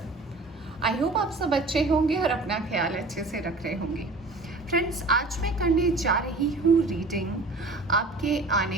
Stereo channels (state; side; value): quieter; left; 3.1 dB